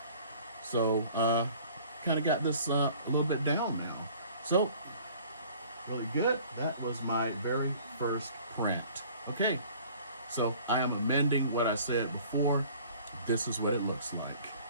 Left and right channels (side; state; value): both; inverted; correlation -0.51